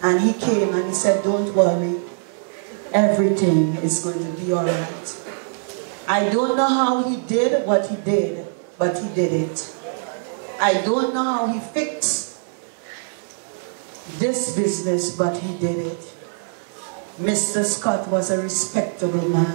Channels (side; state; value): left; silent; digital silence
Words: And he came and he said, don't worry. Everything is going to be all right. I don't know how he did what he did, but he did it. I don't know how he fixed this business, but he did it. Mr. Scott was a respectable